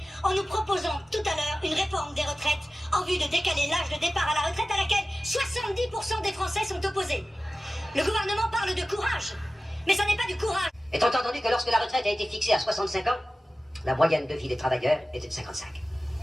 en nous proposant tout à l'heure une réforme des retraites en vue de décaler l'âge de départ à la retraite à laquelle 70% des Français sont opposés? Le gouvernement parle de courage, mais ça n'est pas du courage. Étant entendu que lorsque la retraite a été fixée à 65 ans, la moyenne de vie des travailleurs était de 55.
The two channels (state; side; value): normal; both; correlation 0.95